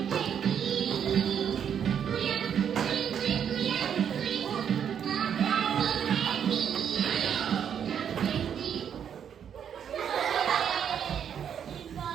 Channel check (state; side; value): quieter; left; 8.4 dB